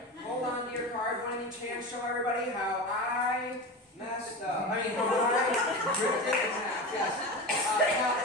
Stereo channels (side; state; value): both; normal; correlation 0.26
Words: Hold on to your card. One in each hand. Show everybody how I messed up. I mean, how I ripped it in half. Yes. Now,